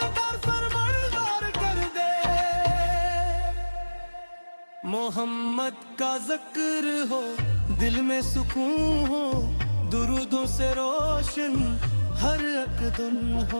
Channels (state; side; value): inverted; both; correlation -1.00